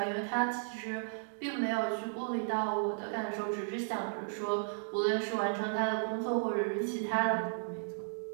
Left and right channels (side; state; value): left; silent; digital silence